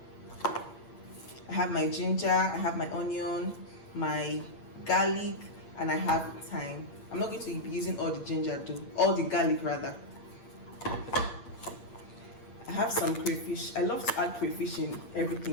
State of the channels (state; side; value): late; right; 8.6 ms